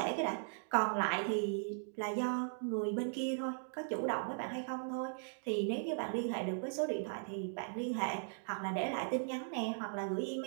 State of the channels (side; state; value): left; silent; digital silence